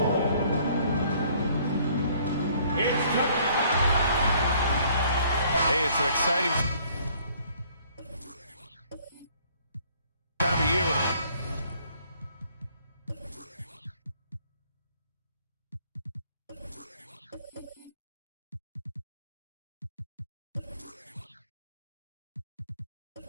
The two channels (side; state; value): both; inverted; correlation -0.60